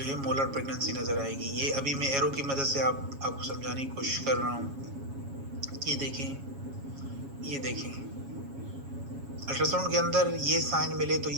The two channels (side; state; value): left; late; 7.3 ms